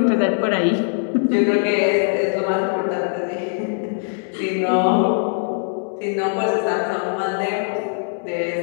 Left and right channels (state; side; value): silent; right; 65 dB below the other